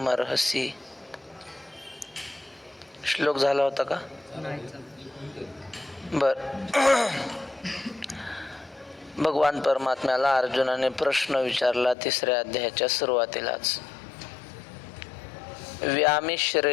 श्लोक झाला होता का? बर. भगवान परमात्म्याला अर्जुनाने प्रश्न विचारला तिसऱ्या अध्यायाच्या सुरुवातीलाच.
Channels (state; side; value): drops out; right; at 12.0 s